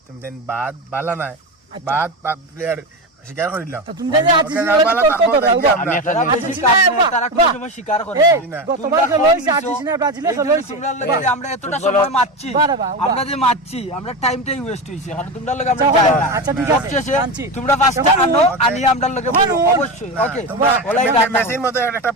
তুমি যেন বাদ বালা নাই, বাদ প্লেয়ার স্বীকার করিলাও। তো তুমি জানি ওকে, আর্জেন্টিনা বালা তর্ক তারপর করো, দেখি উবা। আমরা। আমি একটা তারা জিনিস- বেশি কাজ নেই, তারা কোনো সময় স্বীকার করে না। এই, গতবার তোমরা খেলা হইছে কম আর্জেন্টিনা ব্রাজিলে এই খেলা জন্য হইছে তোমরা লগে যে আমরা এতটা ফুটবল- সময় মারছি বারে বা, উবা। আমরা যে মারছি আমরা টাইমটাই ওয়েস্ট হইছে কারণ তোমরা লগে আমরা আচ্ছা, যাই না। আচ্ছা, ঠিক আছে, সবশেষে মানছি। তোমরা পাঁচটা এখন আনো ও- আনি আমরা লগে এখন বলো, ও- অবশ্যই ওকে তোমরা ওলাই মে- রাখো। মেসির মতো একটা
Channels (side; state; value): both; normal; correlation 0.20